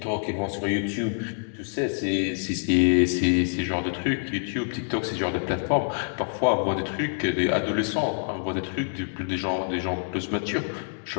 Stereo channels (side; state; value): right; silent; digital silence